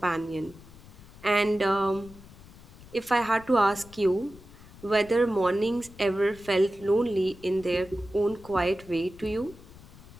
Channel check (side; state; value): left; noise; rumble, 20 dB below the sound